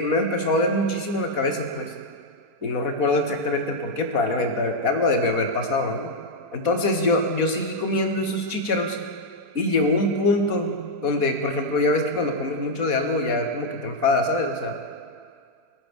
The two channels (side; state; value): left; late; 4.1 ms